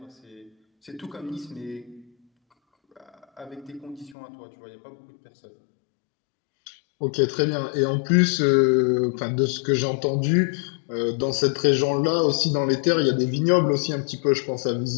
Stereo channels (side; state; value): right; drops out; at 4.2 s